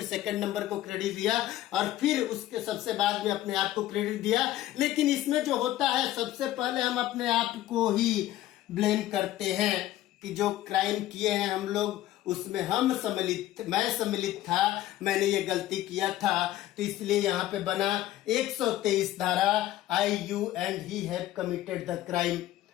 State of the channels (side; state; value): right; quieter; 14.4 dB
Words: सेकंड नंबर को क्रेडिट दिया और फिर उसके सबसे बाद में अपने आप को क्रेडिट दिया। लेकिन इसमें जो होता है सबसे पहले हम अपने आप को ही ब्लेम करते हैं कि जो क्राइम किए हैं हम लोग उसमें मैं सम्मिलित था, मैंने ये गलती किया था, तो इसलिए यहाँ पे बना 123 धारा, I you and he have committed the crime.